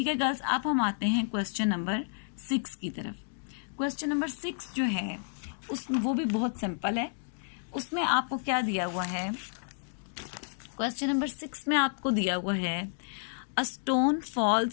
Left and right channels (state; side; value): silent; right; digital silence